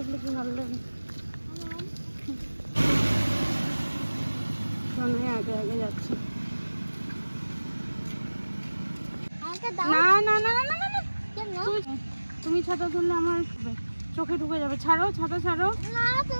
কি ভালো লাগে। আগে আগে যাচ্ছে। না না না না না না, তুমি ছাতা ধরলে আমার চোখে ঢুকে যাবে। ছাড়ো ছাতা, ছাড়ো,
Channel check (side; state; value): both; inverted; correlation -1.00